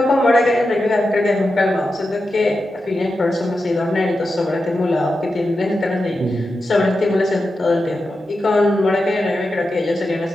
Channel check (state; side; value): normal; both; correlation 0.90